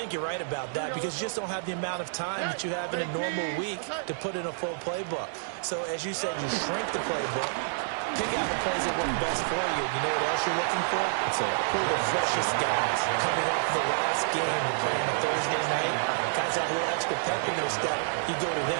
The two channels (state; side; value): silent; left; digital silence